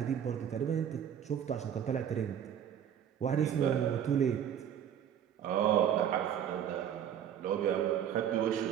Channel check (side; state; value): left; quieter; 9.3 dB